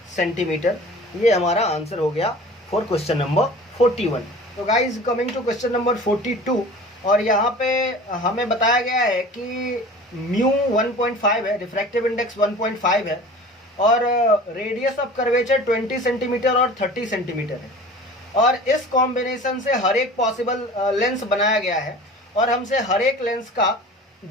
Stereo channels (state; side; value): normal; both; correlation 0.41